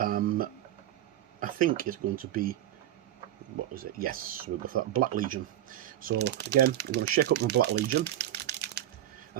I think it's going to be, what was it? Yes, we'll go for that Black Legion. So again, we're going to shake up my Black Legion.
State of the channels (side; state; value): left; quieter; 12.7 dB